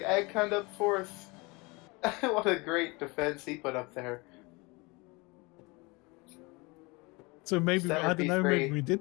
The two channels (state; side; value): quieter; right; 26.2 dB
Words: hunt up 4th. What a great defense he put up there. So maybe, Center I don't know, P3. maybe we